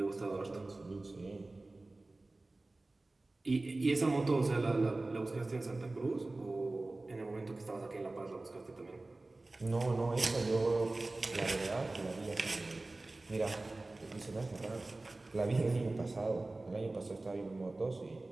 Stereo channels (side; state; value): left; quieter; 3.0 dB